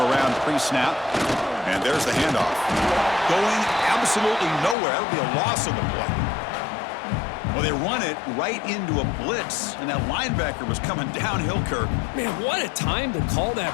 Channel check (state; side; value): drops out; right; at 4.8 s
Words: pre-snap. And there's the handoff. Going absolutely nowhere. That'll be a loss of the play. Well, they run it right into a blitz, and that linebacker was coming downhill, Kirk. Man, what a time to call that